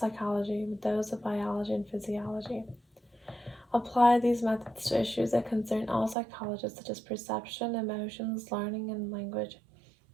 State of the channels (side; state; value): left; drops out; at 6.2 s